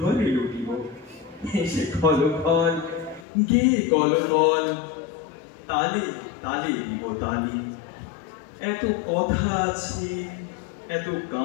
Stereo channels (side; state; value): right; drops out; at 3.2 s